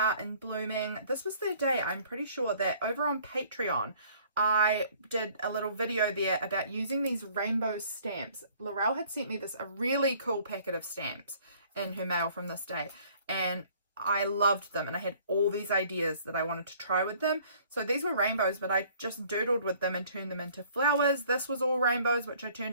and blooming. This was the day, I'm pretty sure, that over on Patreon, I did a little video there about using these rainbow stamps. Laurelle had sent me a really cool packet of stamps in her mail from this day, and I loved them, and I had all these ideas that I wanted to try with them. So these were rainbows, but I just doodled with them and turned them into flowers. This was all rainbows, which I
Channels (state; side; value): inverted; both; correlation -0.56